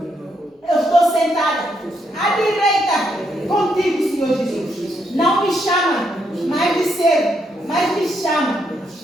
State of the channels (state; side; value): normal; both; correlation 0.77